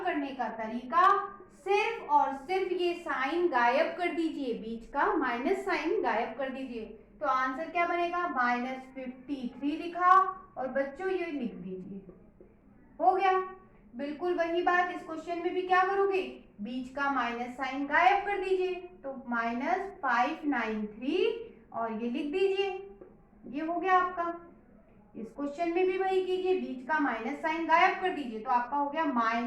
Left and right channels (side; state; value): both; identical; correlation 1.00